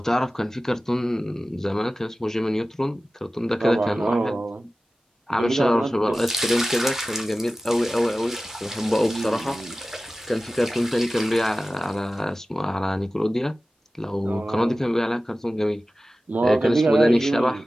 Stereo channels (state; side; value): normal; both; correlation 0.96